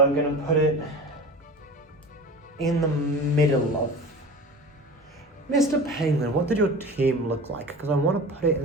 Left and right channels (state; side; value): normal; both; correlation 0.35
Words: going to put it in the middle of... Mr. Penguin, what did your team look like? Because I want to put it